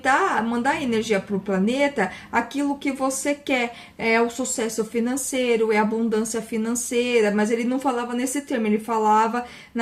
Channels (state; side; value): identical; both; correlation 1.00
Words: mandar energia para o planeta, aquilo que você quer. É o sucesso financeiro, é a abundância financeira, mas ele não falava nesse termo, ele falava